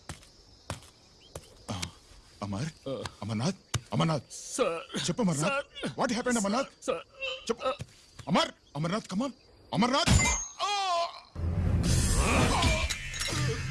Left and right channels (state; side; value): identical; both; correlation 1.00